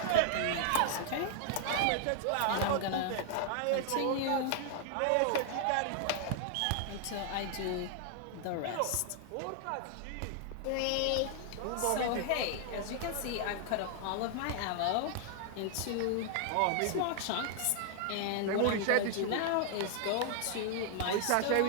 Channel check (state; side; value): different; both; correlation 0.00